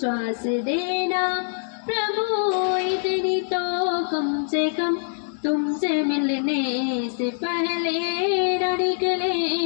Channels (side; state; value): right; silent; digital silence